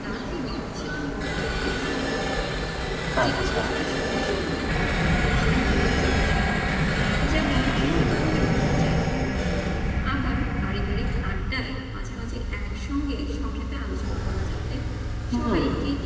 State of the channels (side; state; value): both; identical; correlation 1.00